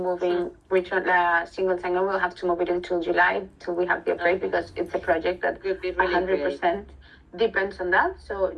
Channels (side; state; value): both; identical; correlation 1.00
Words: single sign-on. We'll have to move it until July till we have the upgrade because it's a project that Would be really 100% depends on that. So